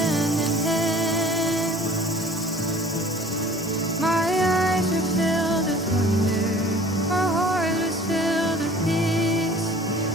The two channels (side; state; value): both; normal; correlation 0.49